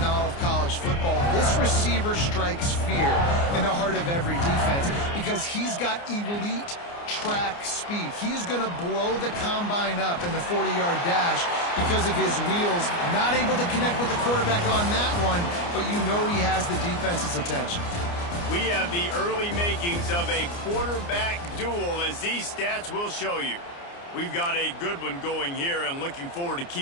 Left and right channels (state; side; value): late; right; 29 ms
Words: all of college football. This receiver strikes fear in the heart of every defense because he's got elite track speed. He is going to blow the combine up in the 40-yard dash because of his wheels. Not able to connect with the quarterback on that one, but you know he has the defense's attention. We have the early makings of a quarterback duel, as these stats will show you. We've got a good one going here, and looking forward to